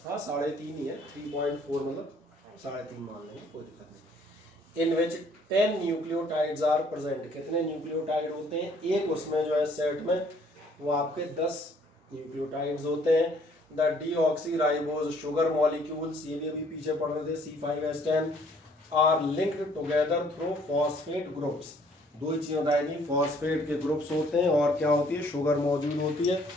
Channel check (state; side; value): normal; both; correlation 0.61